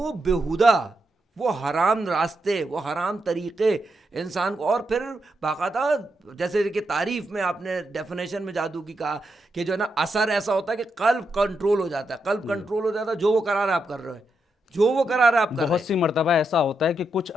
بیہودہ، وہ حرام راستے، وہ حرام طریقے انسان کو، اور پھر باقاعدہ جیسے کہ تعریف میں آپ نے ڈیفینیشن میں جادو کی کہا کہ جو ہے نا اثر ایسا ہوتا ہے کہ قلب کنٹرول ہو جاتا ہے، قلب کنٹرول ہو جاتا ہے، جو وہ قرار آپ کر رہے ہیں، جو وہ کرا رہا ہے آپ کر رہے بہت ہیں. سی مرتبہ ایسا ہوتا ہے کہ کچھ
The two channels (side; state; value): both; normal; correlation 0.83